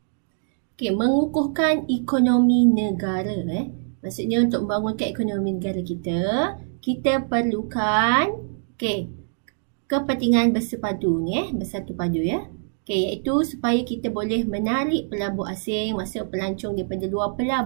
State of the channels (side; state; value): left; silent; digital silence